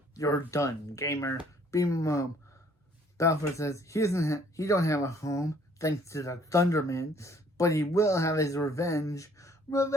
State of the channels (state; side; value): normal; both; correlation 0.60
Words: you're done, gamer. Beam him home. Balfour says, he don't have a home, thanks to the Thunderman, but he will have his revenge.